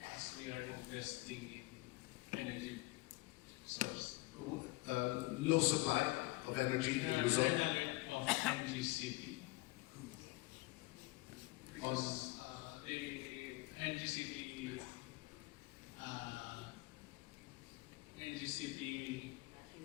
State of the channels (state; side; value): quieter; right; 21.6 dB